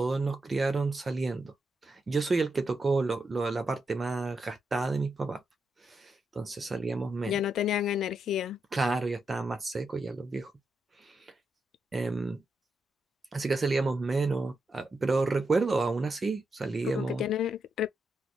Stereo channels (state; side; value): normal; both; correlation 0.84